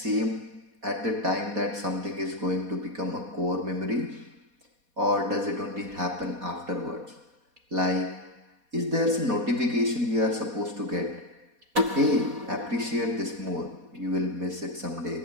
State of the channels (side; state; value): left; late; 4.2 ms